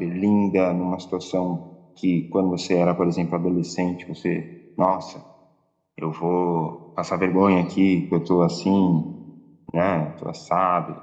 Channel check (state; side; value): identical; both; correlation 1.00